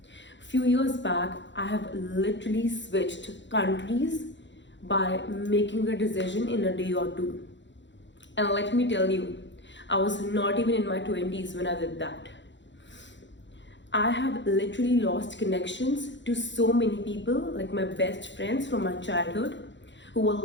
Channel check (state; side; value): late; right; 0.53 ms